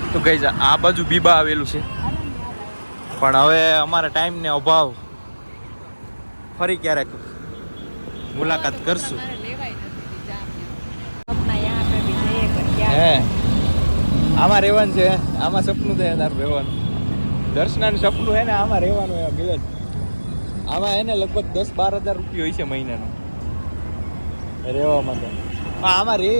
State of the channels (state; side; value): inverted; both; correlation -1.00